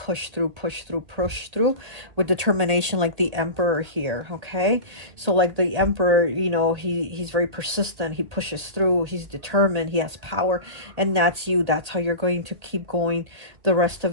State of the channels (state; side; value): late; left; 1.8 ms